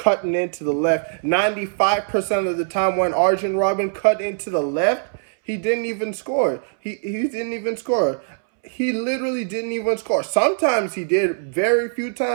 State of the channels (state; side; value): silent; left; 65 dB below the other